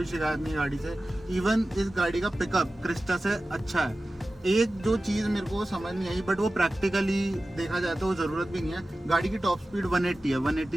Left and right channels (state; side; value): normal; both; correlation 0.95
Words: शिकायत नहीं गाड़ी से। इवन इस गाड़ी का पिकअप क्रिस्टा से अच्छा है। एक जो चीज़ मेरे को समझ नहीं आई, बट वो प्रैक्टिकली देखा जाए तो जरूरत भी नहीं है। गाड़ी की टॉप स्पीड 180 है, 180